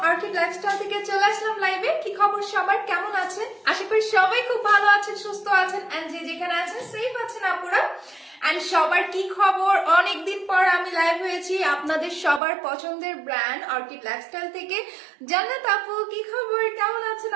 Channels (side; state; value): left; drops out; at 12.4 s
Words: orchid lifestyle থেকে চলে আসলাম লাইভে। কি খবর সবার, কেমন আছেন? আশা করি সবাই খুব ভালো আছেন, সুস্থ আছেন এন্ড যে যেখানে আছেন সেফ আছেন আপুরা। এন্ড সবার কি খবর? অনেকদিন পর আমি লাইভ হয়েছি আপনাদের সবার পছন্দের ব্র্যান্ড অর্কিড লাইফস্টাইল থেকে। জান্নাত আপু কি খবর, কেমন আছেন